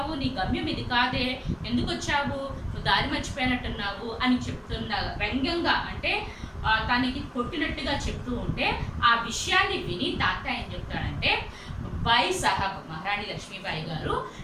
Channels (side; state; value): both; identical; correlation 1.00